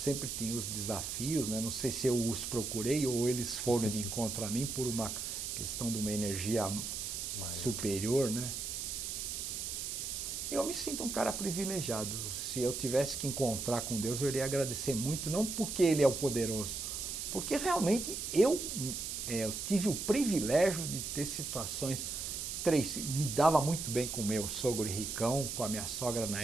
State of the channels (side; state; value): right; noise; hiss, 4 dB below the sound